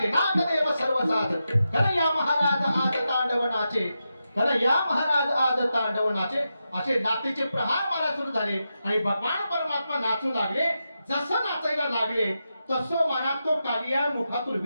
नागदेव सर्व साज. कन्हैया महाराज आज तांडव नाचे, कन्हैया महाराज आज तांडव नाचे. असे नातेचे प्रहार मला सुरू झाले आणि भगवान परमात्मा नाचू लागले. जसं नाचायला लागले तसं मनात तो कालिया मुखातून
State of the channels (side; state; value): both; inverted; correlation -0.88